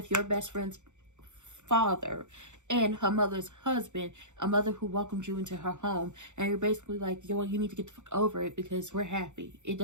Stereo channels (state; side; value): late; left; 0.84 ms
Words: your best friend's father and her mother's husband, a mother who welcomed you into her home, and you're basically like, yo, you need to get the fuck over it because we're happy. It